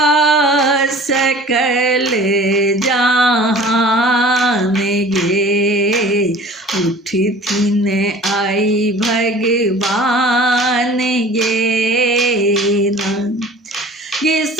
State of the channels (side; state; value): both; normal; correlation 0.45